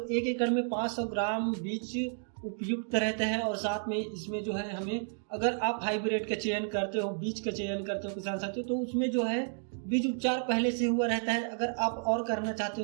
1 एकड़ में 500 ग्राम बीज उपयुक्त रहता है और साथ में इसमें जो है हमें, अगर आप हाइब्रिड का चयन करते हो, बीज का चयन करते हो किसान साथियों, तो उसमें जो है बीज उपचार पहले से हुआ रहता है। अगर आप और करना चाहते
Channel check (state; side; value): silent; left; 57 dB below the other